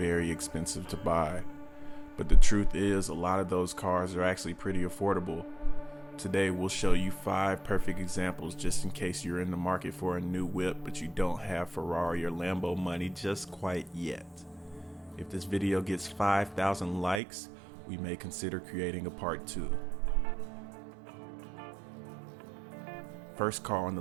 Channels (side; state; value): left; drops out; at 17.2 s